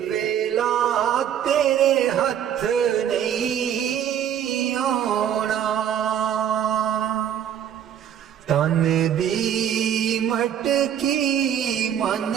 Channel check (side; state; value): left; quieter; 9.5 dB